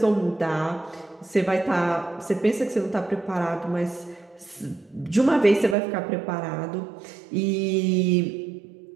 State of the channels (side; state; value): left; drops out; at 5.8 s